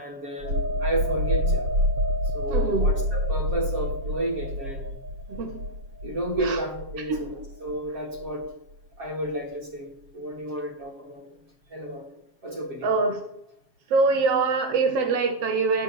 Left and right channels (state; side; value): late; left; 7.3 ms